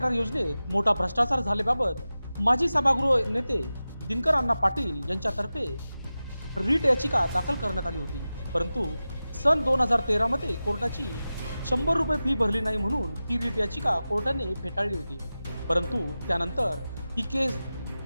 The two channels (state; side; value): inverted; both; correlation -0.95